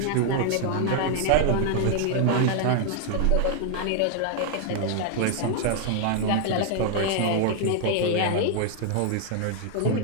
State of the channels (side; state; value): both; different; correlation 0.00